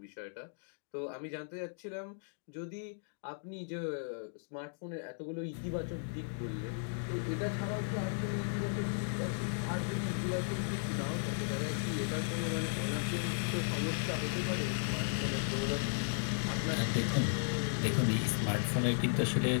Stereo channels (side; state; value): right; silent; digital silence